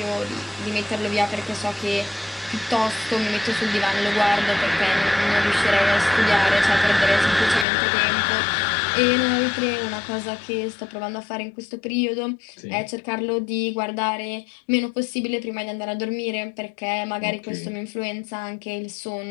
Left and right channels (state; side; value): drops out; right; at 7.7 s